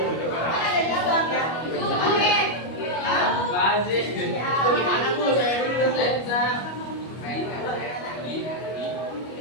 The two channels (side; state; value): right; late; 25 ms